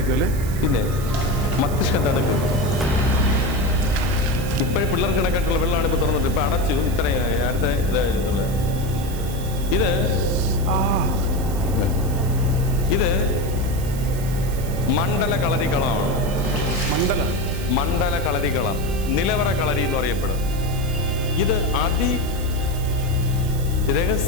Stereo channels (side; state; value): right; noise; hiss, 14 dB below the sound